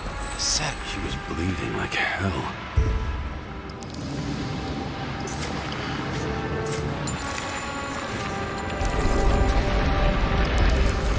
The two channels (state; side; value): identical; both; correlation 1.00